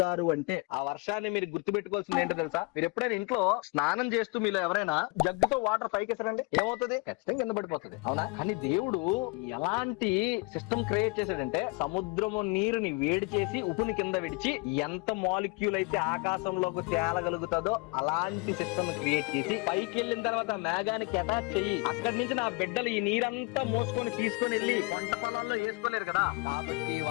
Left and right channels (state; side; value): quieter; right; 27.8 dB